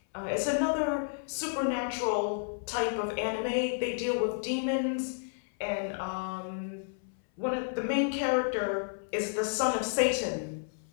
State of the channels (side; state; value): right; silent; 57 dB below the other